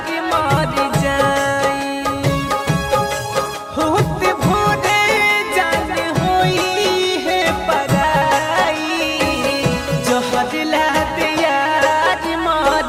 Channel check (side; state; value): both; identical; correlation 1.00